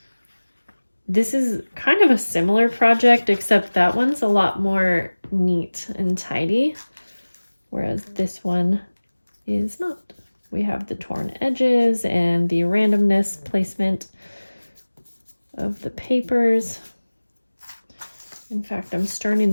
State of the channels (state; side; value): inverted; both; correlation -1.00